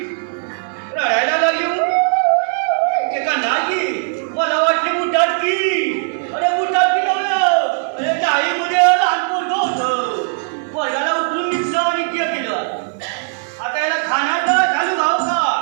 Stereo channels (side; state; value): left; silent; 60 dB below the other